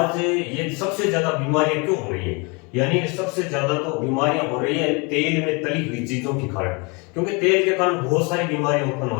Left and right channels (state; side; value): quieter; right; 30.2 dB